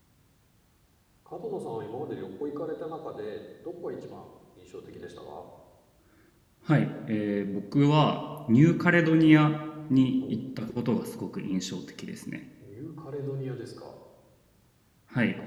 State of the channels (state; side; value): identical; both; correlation 1.00